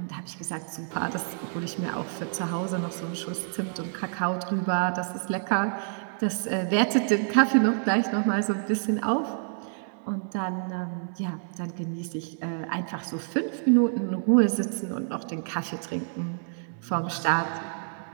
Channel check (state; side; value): silent; left; 59 dB below the other